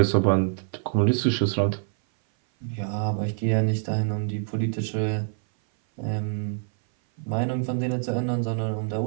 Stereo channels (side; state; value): left; silent; 59 dB below the other